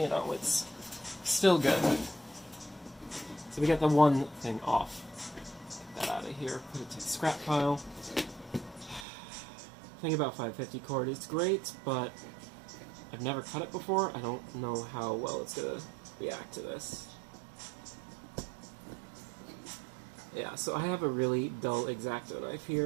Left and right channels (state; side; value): drops out; left; at 9.1 s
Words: know, it's still good. So we got the one thing off. Get that out of here. Put it to the scrap pile. Thing about 550 cord, it's great, but I've never cut it before. I don't know how well it's going to react to this. Yeah, so I have a really dull X-Acto knife